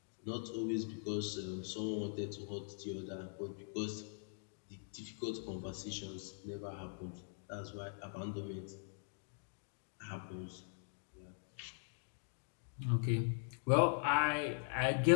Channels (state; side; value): silent; right; digital silence